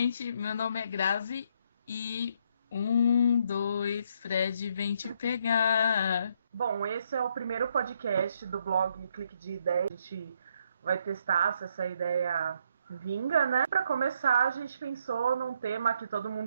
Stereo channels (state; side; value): inverted; both; correlation -0.72